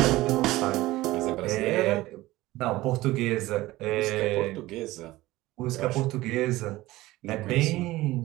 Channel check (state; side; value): quieter; left; 18.0 dB